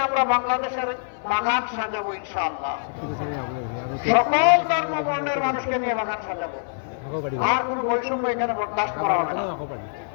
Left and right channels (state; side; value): silent; right; digital silence